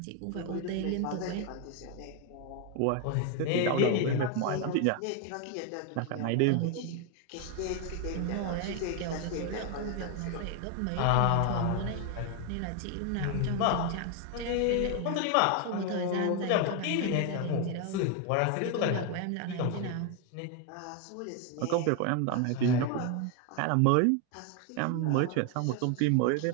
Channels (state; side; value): different; both; correlation 0.01